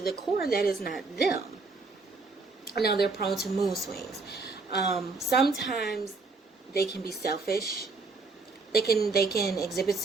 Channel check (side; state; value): left; quieter; 4.0 dB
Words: core, that is not them. Now they're prone to mood swings. Sometimes they can be selfish. They can exhibit